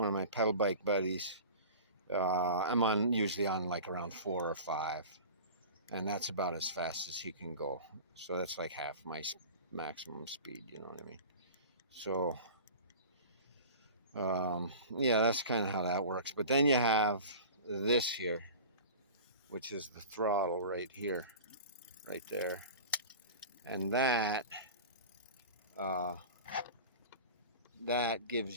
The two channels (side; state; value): both; inverted; correlation -0.37